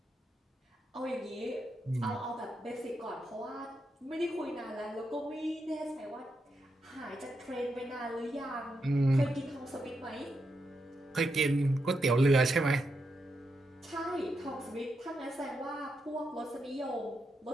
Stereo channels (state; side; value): normal; both; correlation 0.83